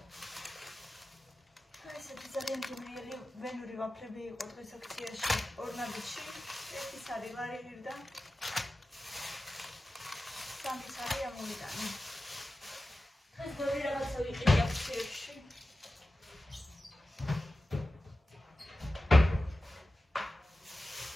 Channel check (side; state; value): both; normal; correlation 0.94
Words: ესეთი ძალიან ძლიერი ვენური ვაფლები იყო დღეს აქციაში ორნაბიტში. ერთი სარი ლარი მივდა. სამი სარი ამოვიტანე. დღეს ბევრი რაღაცა ვიყიდი აქციაში.